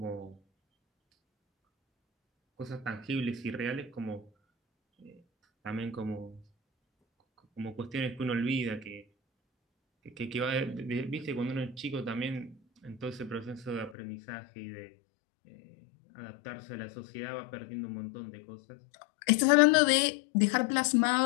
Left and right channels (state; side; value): drops out; right; at 14.0 s